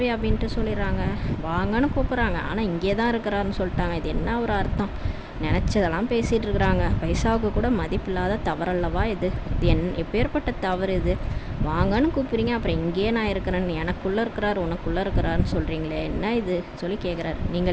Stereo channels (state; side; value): identical; both; correlation 1.00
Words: சொல்லிடுறாங்க, வாங்கன்னு கூப்பிட்றாங்க. ஆனால் இங்கே தான் இருக்கிறாருன்னு சொல்லிட்டாங்க. இது என்ன ஒரு அர்த்தம்? நினச்சதெல்லாம் பேசிகிட்டு இருக்கிறாங்க. பைசாவுக்கு கூட மதிப்பில்லாத தவறல்லவா இது? எப்பேற்பட்ட தவறு இது? வாங்கன்னு கூப்பிட்றீங்க, அப்புறம் இங்கேயே நான் இருக்கிறேன்னு, எனக்குள்ளே இருக்கிறார் உனக்குள்ளே இருக்கிறாருன்னு சொல்கிறீங்களே, என்ன இது சொல்லி கேட்குறாரு.